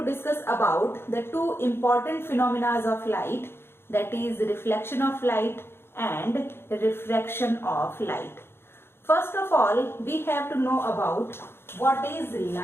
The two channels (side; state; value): right; late; 0.11 ms